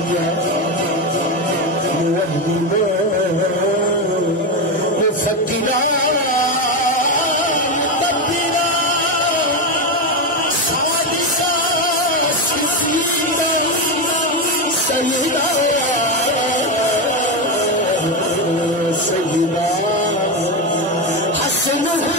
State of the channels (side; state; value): both; normal; correlation 0.12